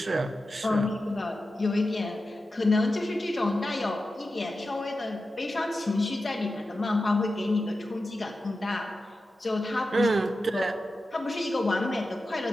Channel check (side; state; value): both; normal; correlation 0.92